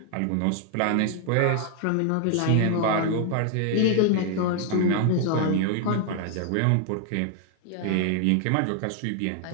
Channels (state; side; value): different; both; correlation 0.00